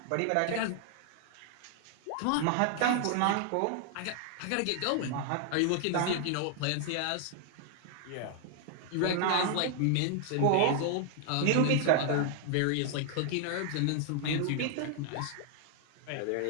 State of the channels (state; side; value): different; both; correlation 0.00